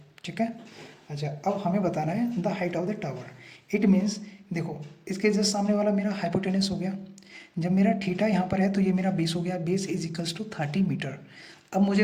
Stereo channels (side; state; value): both; identical; correlation 1.00